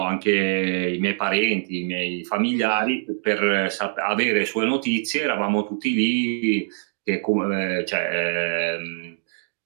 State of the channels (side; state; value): left; silent; digital silence